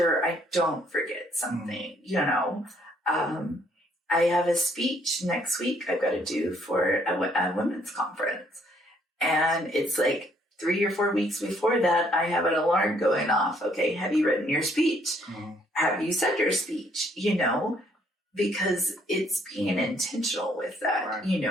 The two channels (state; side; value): normal; both; correlation 0.67